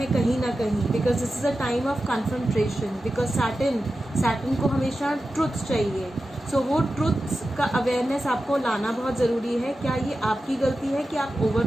कहीं ना कहीं, because this is a time of confrontation. Because Saturn को हमेशा ट्रुथ चाहिए। सो वो ट्रुथ्स का अवेयरनेस आपको लाना बहुत ज़रूरी है। क्या ये आपकी गलती है कि आप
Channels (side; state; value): both; normal; correlation 0.92